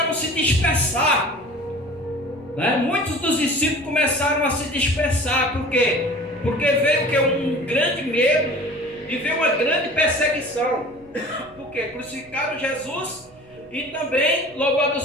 a se dispersar. Muitos dos discípulos começaram a se dispersar. Por quê? Porque veio um grande medo e veio uma grande perseguição. Porque crucificaram Jesus e também, louvado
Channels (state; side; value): noise; right; rumble, 28 dB below the sound